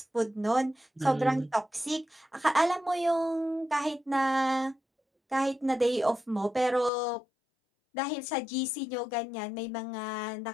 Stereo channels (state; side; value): drops out; right; at 6.9 s